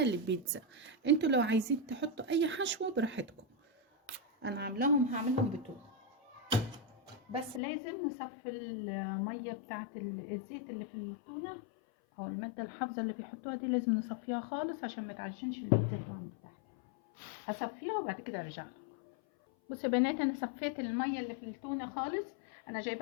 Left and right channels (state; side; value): drops out; right; at 7.6 s